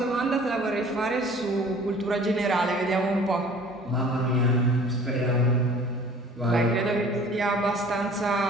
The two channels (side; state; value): both; normal; correlation 0.48